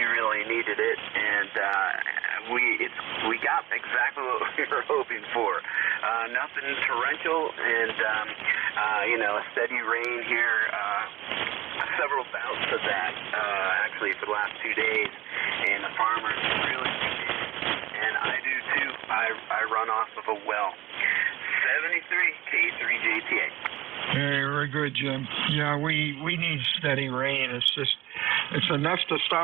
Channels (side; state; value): left; quieter; 17.0 dB